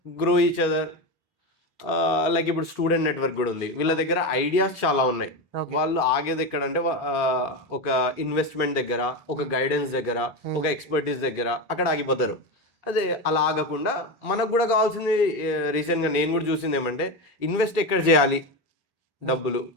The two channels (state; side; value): normal; both; correlation 0.17